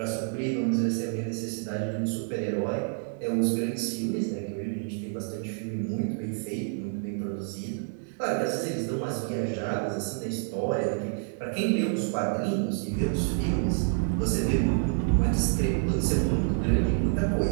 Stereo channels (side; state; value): left; silent; 59 dB below the other